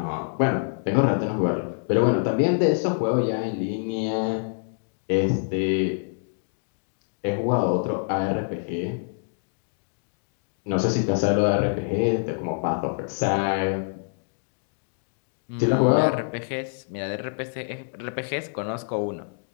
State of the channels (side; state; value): right; silent; digital silence